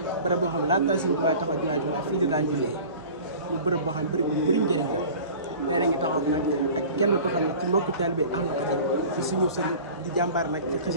bërëb boo xam ne laata Serigne Touba taxaw jumaay Touba fii la daan jullee ñu bërëb boo xam ne bërëb bu bëri njëriñ la. tey nañu taxaw nag ak kenn ko xam ne ci mbokk taalibe Ahlu Khadim ci suñu sëriñ di jàmbaar nag ci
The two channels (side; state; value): both; inverted; correlation -0.41